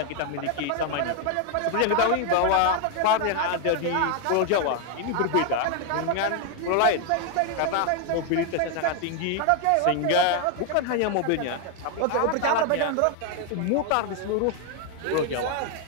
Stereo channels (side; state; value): both; different; correlation 0.01